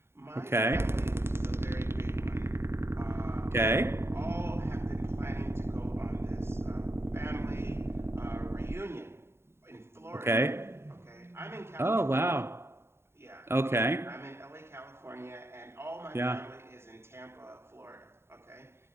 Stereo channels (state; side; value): late; left; 0.12 ms